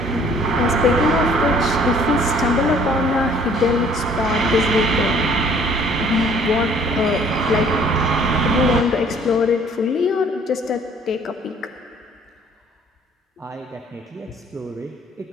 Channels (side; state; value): both; normal; correlation 0.57